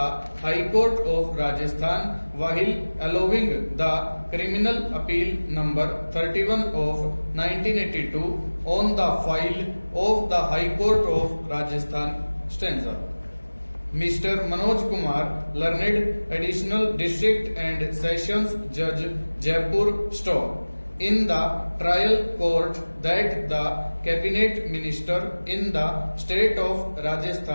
High Court of Rajasthan, while allowing the criminal appeal number 31 of 1982 on the file of the High Court of Rajasthan stanza. Mr. Manoj Kumar, learned additional district and sessions judge, Jaipur Store, in the trial court that the cabinet minister in the state of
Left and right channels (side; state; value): both; inverted; correlation -1.00